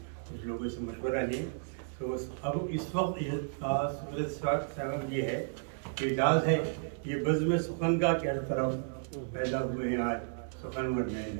कुछ लोगों से मशवरा लें। तो अब इस वक्त ये है कि इजाज़ है ये बज़्म सुखन का क्या तरफ पैदा हुए हैं आज सुखन और मैन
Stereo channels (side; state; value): left; silent; digital silence